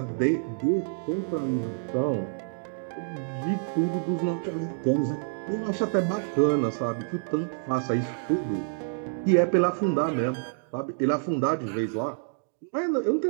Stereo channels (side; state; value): left; silent; digital silence